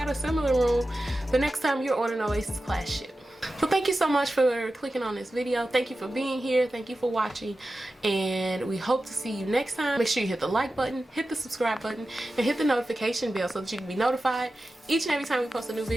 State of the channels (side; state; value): both; normal; correlation 0.93